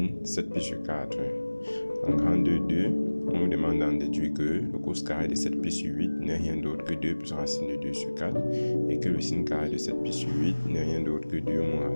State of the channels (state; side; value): inverted; both; correlation -1.00